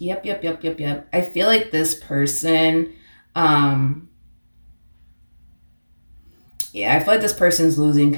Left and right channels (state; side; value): inverted; both; correlation -1.00